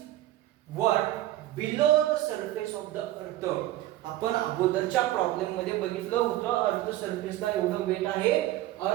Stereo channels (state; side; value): quieter; left; 14.8 dB